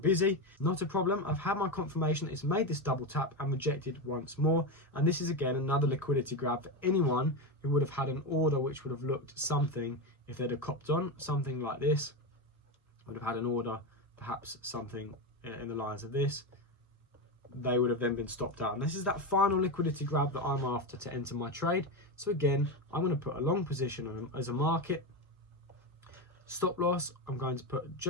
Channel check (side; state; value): both; normal; correlation 0.14